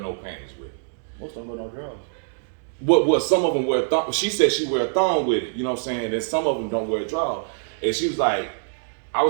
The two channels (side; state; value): left; silent; digital silence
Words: panties with it? Most of them wear no drawers. What some of them wear thong. She said she wear a thong with it. You know what I'm saying? And some of them don't wear a drawers. And she was like, I